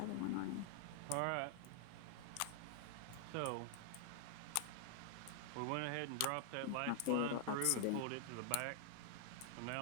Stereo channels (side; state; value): both; different; correlation -0.01